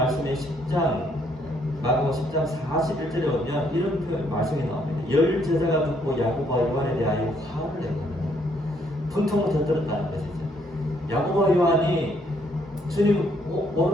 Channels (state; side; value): normal; both; correlation 0.69